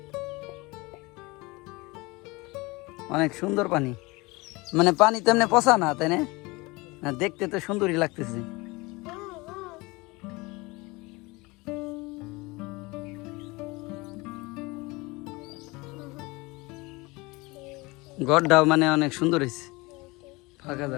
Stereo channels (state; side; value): quieter; right; 24.0 dB